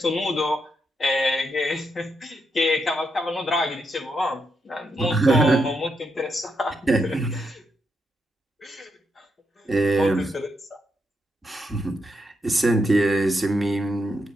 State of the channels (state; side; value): normal; both; correlation 0.81